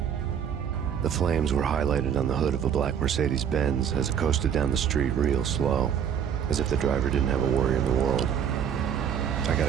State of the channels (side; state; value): left; quieter; 8.4 dB